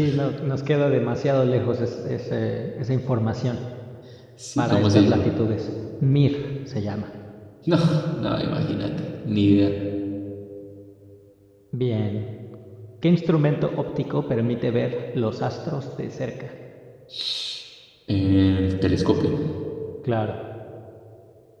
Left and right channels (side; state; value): both; identical; correlation 1.00